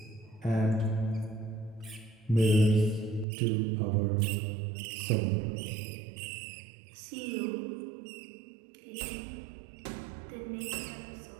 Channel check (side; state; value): left; drops out; at 3.2 s